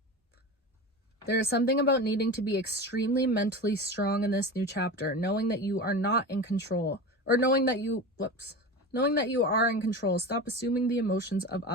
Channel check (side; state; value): both; normal; correlation 0.28